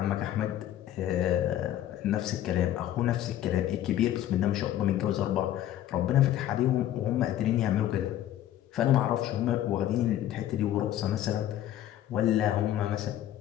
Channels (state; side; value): quieter; right; 12.3 dB